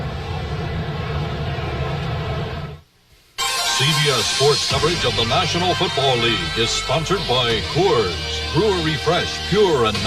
CBS Sports coverage of the National Football League is sponsored by Coors. Brewery Fresh, pure and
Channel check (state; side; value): identical; both; correlation 1.00